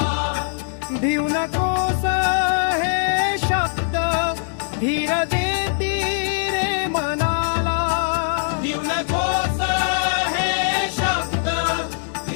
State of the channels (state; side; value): silent; right; digital silence